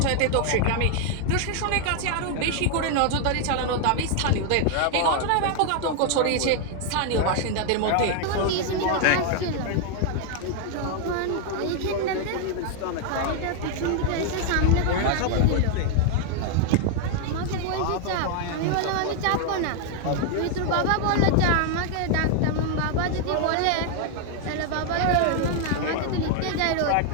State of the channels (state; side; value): different; both; correlation 0.00